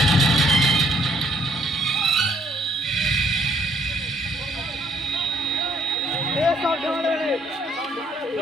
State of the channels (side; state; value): both; normal; correlation 0.65